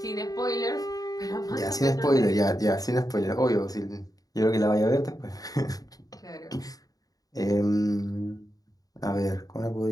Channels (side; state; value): right; late; 0.18 ms